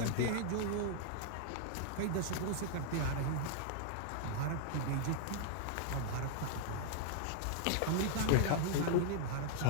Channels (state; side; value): different; both; correlation -0.01